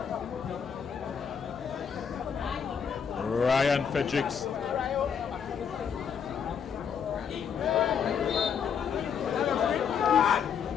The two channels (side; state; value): right; quieter; 7.2 dB